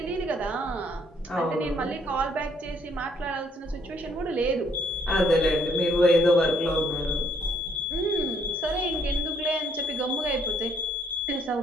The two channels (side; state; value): both; normal; correlation 0.67